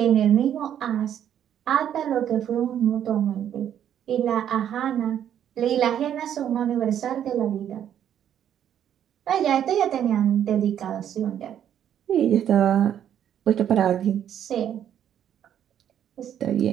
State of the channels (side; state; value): left; quieter; 9.9 dB